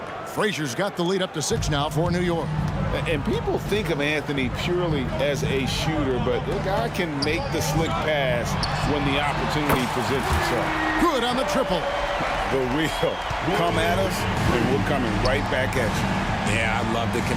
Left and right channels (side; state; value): both; identical; correlation 1.00